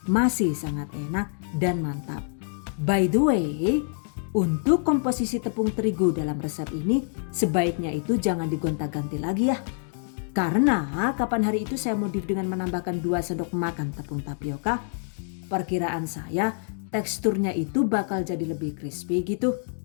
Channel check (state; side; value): silent; right; 61 dB below the other